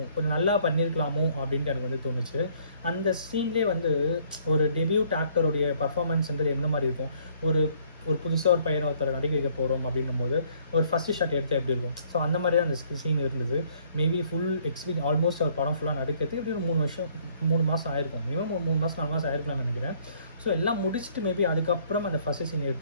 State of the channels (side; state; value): both; inverted; correlation -0.62